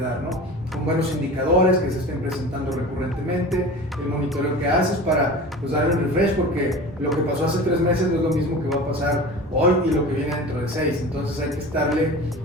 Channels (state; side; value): normal; both; correlation 0.35